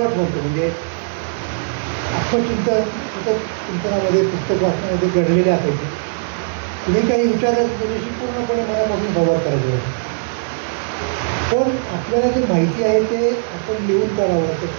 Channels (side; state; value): left; silent; digital silence